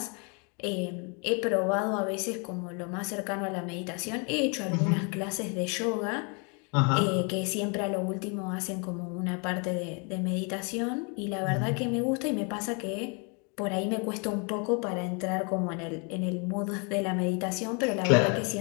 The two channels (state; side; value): quieter; right; 34.8 dB